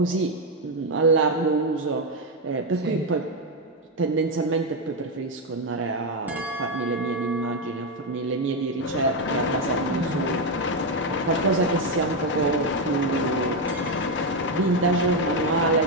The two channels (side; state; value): both; normal; correlation 0.06